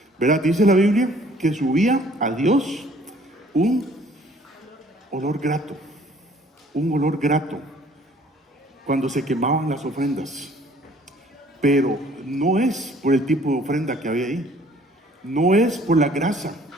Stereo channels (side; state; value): both; normal; correlation 0.57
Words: ¿verdad? Dice la Biblia que subía a Dios un olor grato cuando se quemaban las ofrendas. Pero no es por el tipo de ofrenda que había ahí, no es por la grasa,